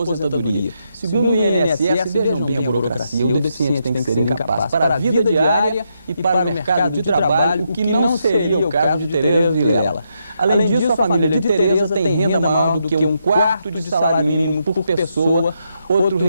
Segundo o INSS, vejam bem a burocracia, o deficiente tem que ser incapaz para a vida diária e para o mercado de trabalho, o que não seria o caso de Tereza Vilela. Além disso, a família de Tereza tem renda maior do que 1/4 de salário mínimo por pessoa, outro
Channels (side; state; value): both; inverted; correlation -0.80